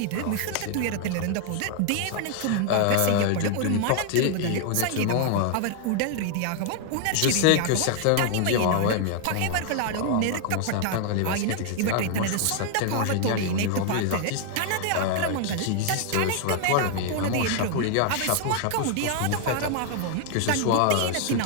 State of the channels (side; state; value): both; different; correlation 0.00